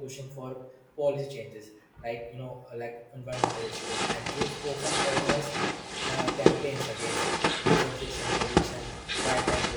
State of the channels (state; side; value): identical; both; correlation 1.00